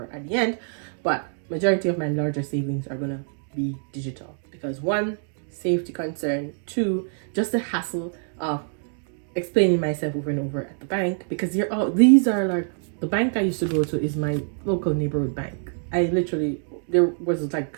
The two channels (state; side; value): silent; left; 62 dB below the other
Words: at the end, but majority of my larger savings are gonna be digital because one, safety concern, two, just the hassle of explaining myself over and over at the bank, because these are like, the bank I used to go to is my local neighborhood bank. There was